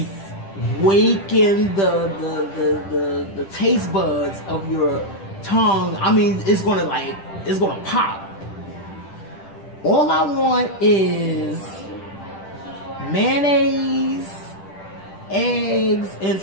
waken the taste buds of your tongue. I mean, it's going to pop. All I want is mayonnaise, eggs, and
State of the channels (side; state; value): right; late; 10 ms